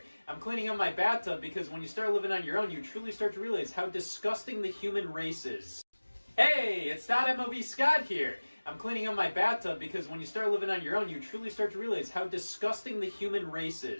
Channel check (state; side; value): inverted; both; correlation -1.00